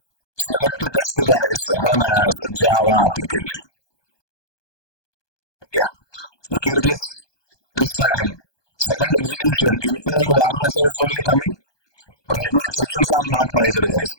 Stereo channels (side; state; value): right; late; 1.2 ms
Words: Select test, guys. Run as Java application. Yeah. Look at this. This time. Second execution, info and warn messages only coming. Right now, exceptions are not raised,